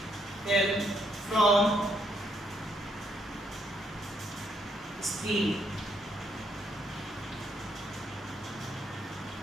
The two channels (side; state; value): both; normal; correlation 0.73